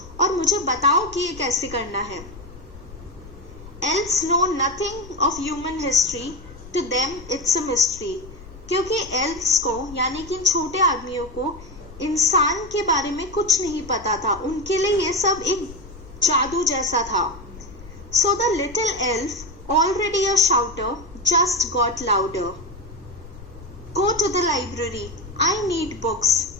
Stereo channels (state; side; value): noise; left; rumble, 17 dB below the sound